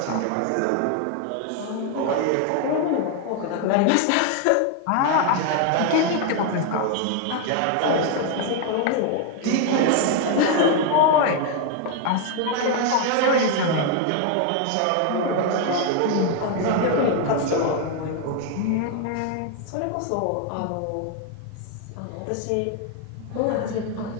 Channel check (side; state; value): both; different; correlation 0.00